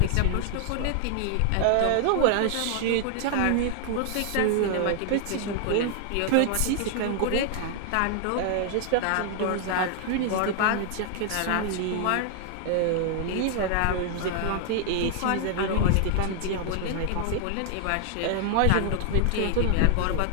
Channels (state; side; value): different; both; correlation 0.00